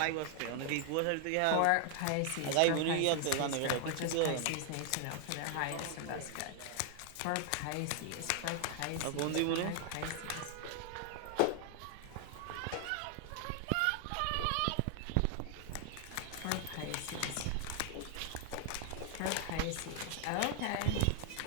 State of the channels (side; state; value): both; different; correlation 0.00